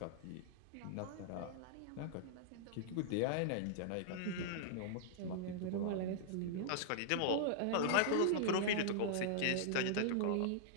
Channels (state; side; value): different; both; correlation -0.01